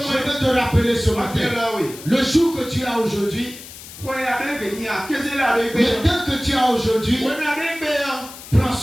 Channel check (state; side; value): noise; left; hiss, 15 dB below the sound